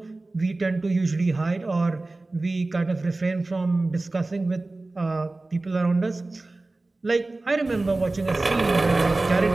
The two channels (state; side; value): quieter; left; 3.1 dB